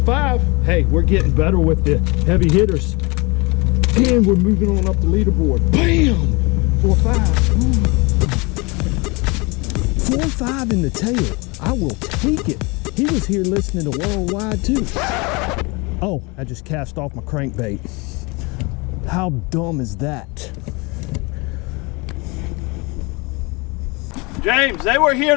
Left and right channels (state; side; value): quieter; right; 27.2 dB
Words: 5. Hey, we're getting better with the heavy hitters. And we're moving on up the leaderboard. Bam! 4-5. 4-5 in the tail. I will take it. He was here listening to Worldwide too. Oh, I just cast off my crankbait. How dumb is that? James, they were here